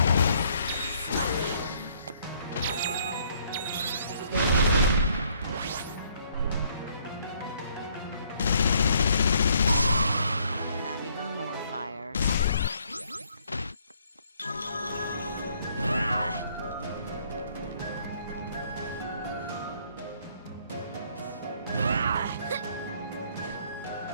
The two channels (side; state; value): both; inverted; correlation -0.65